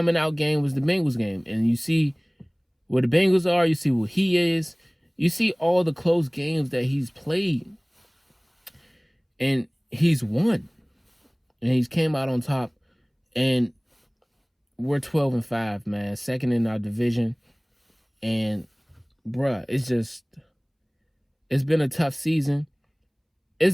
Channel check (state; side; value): identical; both; correlation 1.00